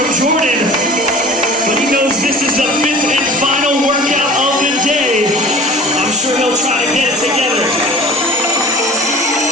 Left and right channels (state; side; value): normal; both; correlation 0.42